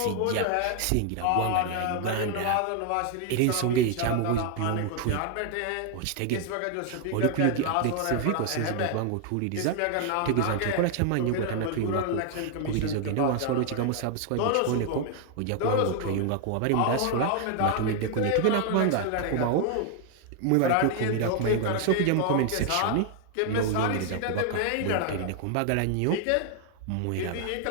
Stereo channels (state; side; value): different; both; correlation 0.00